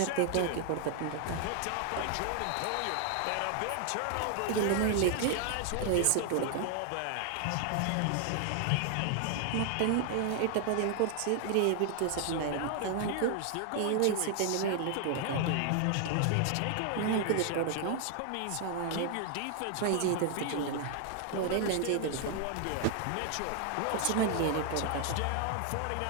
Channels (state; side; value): different; both; correlation 0.00